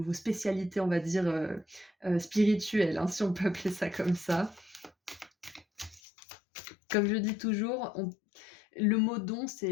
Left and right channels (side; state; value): right; drops out; at 6.0 s